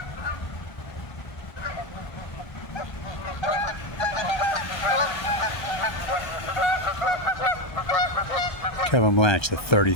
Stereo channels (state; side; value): late; right; 1.3 ms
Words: Kevin Blanch, the